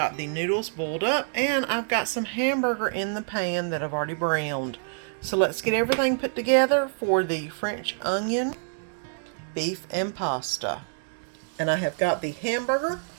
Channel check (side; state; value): left; silent; 60 dB below the other